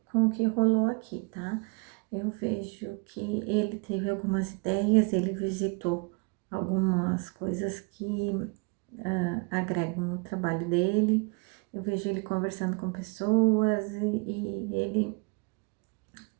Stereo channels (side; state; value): left; quieter; 32.8 dB